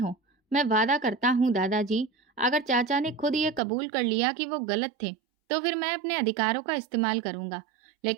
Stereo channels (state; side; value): drops out; left; at 3.6 s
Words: मैं वादा करता हूँ दादाजी, अगर चाचा ने खुद ये कबूल कर लिया कि वो गलत थे, तो फिर मैं अपने अधिकारों का इस्तेमाल करूंगा,